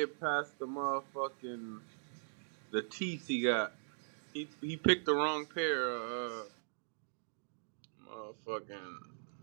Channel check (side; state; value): left; silent; digital silence